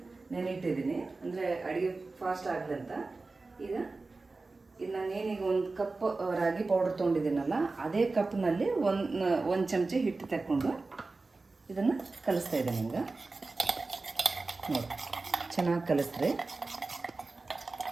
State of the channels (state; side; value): quieter; left; 3.6 dB